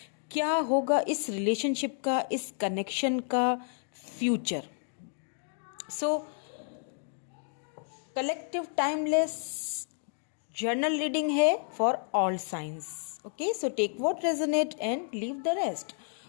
क्या होगा इस रिलेशनशिप का, इस कनेक्शन का future. So collective timeless general reading है for all signs. Okay, so take what resonate and leave the rest.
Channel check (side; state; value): right; silent; 57 dB below the other